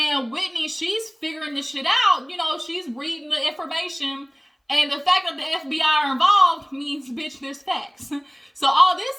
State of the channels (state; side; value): identical; both; correlation 1.00